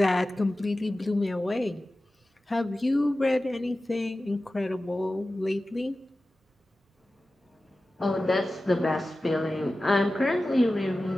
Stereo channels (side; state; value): both; normal; correlation 0.95